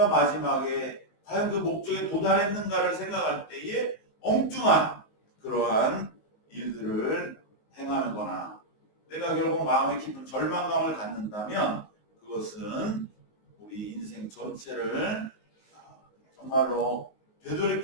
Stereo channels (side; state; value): right; late; 19 ms